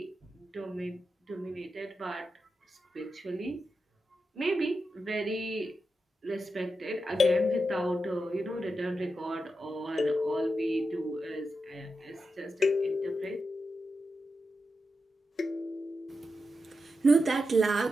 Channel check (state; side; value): normal; both; correlation 0.88